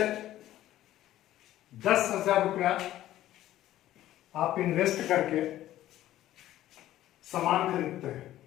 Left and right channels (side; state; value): right; quieter; 13.8 dB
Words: 10,000 रुपया आप इन्वेस्ट करके सामान खरीदते हैं,